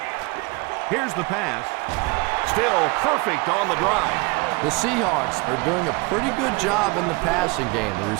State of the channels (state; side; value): quieter; left; 25.9 dB